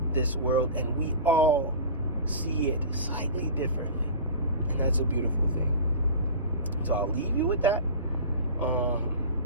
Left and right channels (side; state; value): both; inverted; correlation -0.35